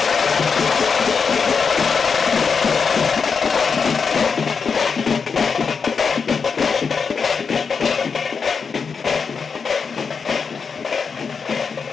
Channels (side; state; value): right; quieter; 5.6 dB